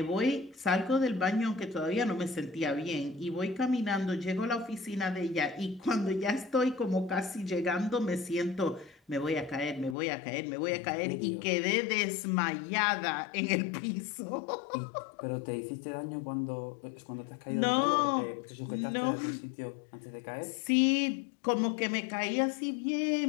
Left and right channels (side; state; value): right; drops out; at 10.0 s